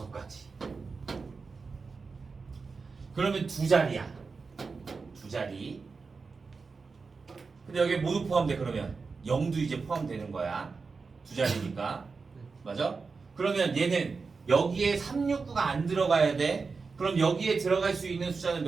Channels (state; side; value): quieter; left; 4.6 dB